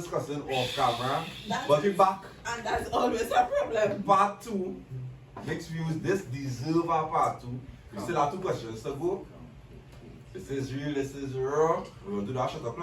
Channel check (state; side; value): identical; both; correlation 1.00